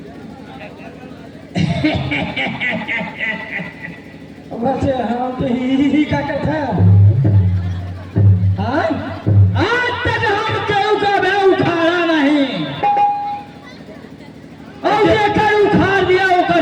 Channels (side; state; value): both; identical; correlation 1.00